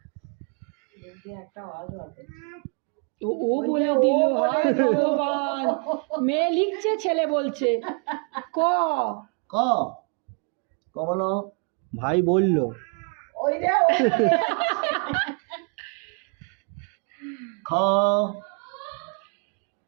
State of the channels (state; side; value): quieter; left; 36.5 dB